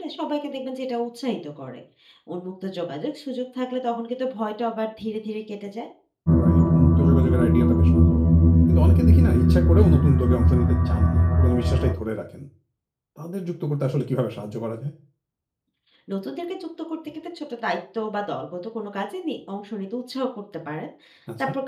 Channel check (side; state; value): both; identical; correlation 1.00